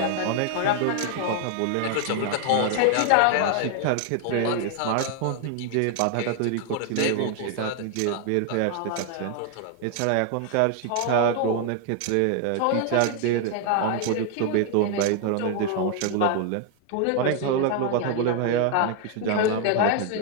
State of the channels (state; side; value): different; both; correlation 0.00